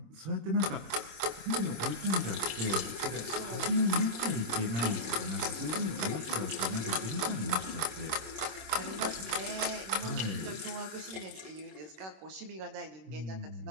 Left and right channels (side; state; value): left; late; 26 ms